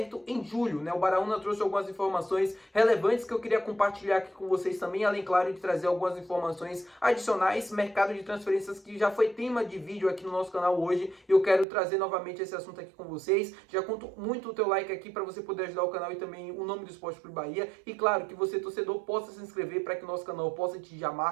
em julho, né? O Baraúna trouxe algumas informações relevantes que eu queria compartilhar aqui com vocês também, além, claro, de trazer algumas informações adicionais, mercado de transferências que já foi tema de vídeo aqui no nosso canal hoje, e eu quero trazer novamente esse assunto aqui com vocês. Já conto muito o teu like aqui para você poder ajudar o canal e também o nome do Esporte Clube Bahia, e claro, que você, torcedor, possa se inscrever para que o nosso canal possa atingir a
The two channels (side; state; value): left; drops out; at 11.7 s